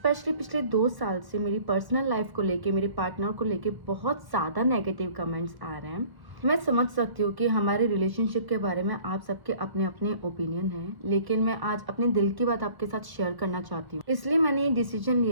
पिछले 2 साल से मेरी पर्सनल लाइफ को लेके, मेरे पार्टनर को लेके बहुत ज़्यादा नेगेटिव कमेंट्स आ रहे हैं। मैं समझ सकती हूँ कि हमारे रिलेशनशिप के बारे में आप सबके अपने-अपने ओपिनियन हैं, लेकिन मैं आज अपने दिल की बात आपके साथ शेयर करना चाहती हूँ। इसलिए मैंने ये डिसीजन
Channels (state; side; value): late; left; 1.1 ms